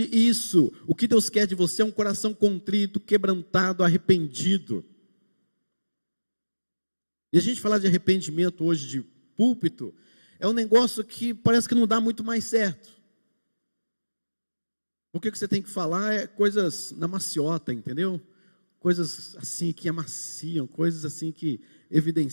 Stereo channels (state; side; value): inverted; both; correlation -1.00